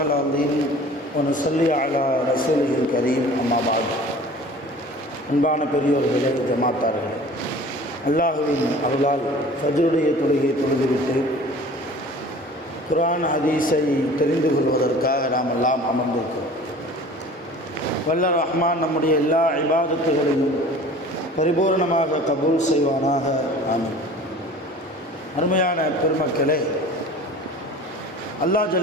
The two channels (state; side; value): normal; both; correlation 0.44